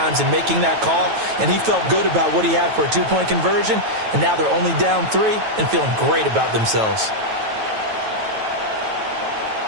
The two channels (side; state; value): left; late; 9.2 ms